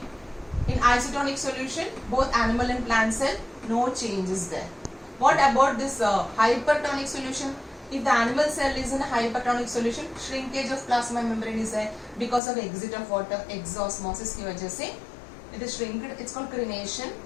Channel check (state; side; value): drops out; right; at 12.4 s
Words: in isotonic solution, both animal and plant cell, no change is there. What about this hypertonic solution? If the animal cell is in a hypertonic solution, shrinkage of plasma membrane is there because of exit of water, exosmosis की वजह से it is shrinked. It's called crenation.